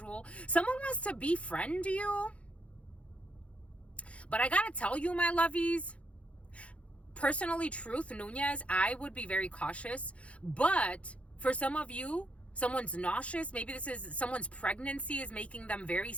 Someone wants to befriend you. But I gotta tell you, my lovies, personally, Truth Nunez, I would be very cautious. But for some of you, someone's nauseous. Maybe this is someone's pregnancy is making them very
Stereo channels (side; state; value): right; late; 0.063 ms